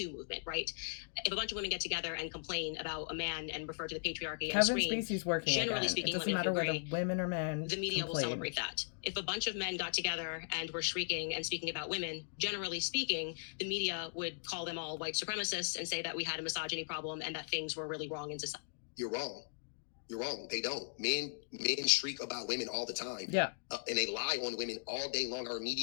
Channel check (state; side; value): silent; right; digital silence